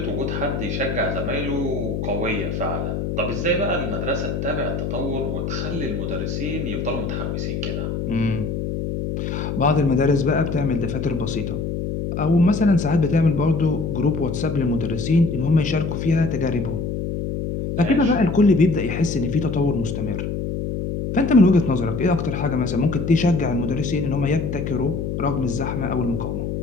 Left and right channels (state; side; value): noise; left; hum, 3 dB below the sound